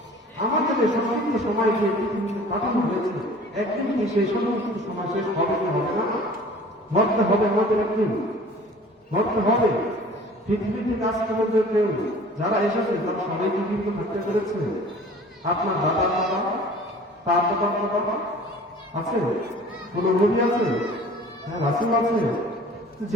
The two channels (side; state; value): both; normal; correlation 0.46